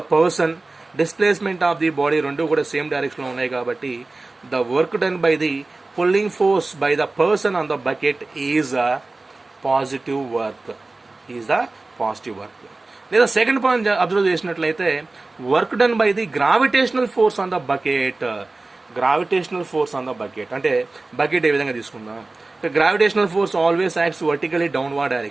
person, displacement of the body రెండు కూడా సేమ్ డైరెక్షన్లో ఉన్నాయి కాబట్టి the work done by the pulling force by the person on the bucket is a positive work, is the positive work. లేదా సెకండ్ పాయింట్ అబ్జర్వ్ చేసినట్లయితే, work done by the gravitational force on the bucket, gravitational force on the bucket. అంటే బకెట్ ఏ విధంగా తీసుకుందాం, gravitational force always acts vertically downward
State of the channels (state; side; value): quieter; left; 3.3 dB